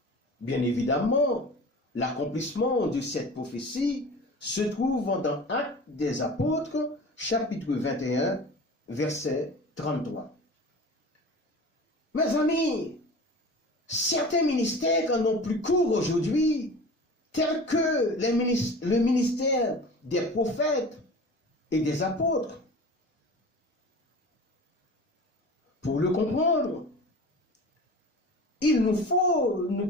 Bien évidemment, l'accomplissement de cette prophétie se trouve dans Actes des Apôtres, chapitre 21, verset 33. Mes amis, certains ministères n'ont plus cours aujourd'hui, tels que le ministère des prophètes et des apôtres. Pour le comprendre, il nous faut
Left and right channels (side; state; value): both; normal; correlation 0.38